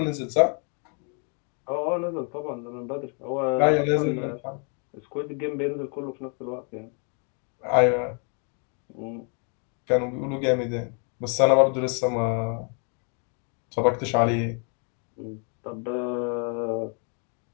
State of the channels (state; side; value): quieter; right; 39.9 dB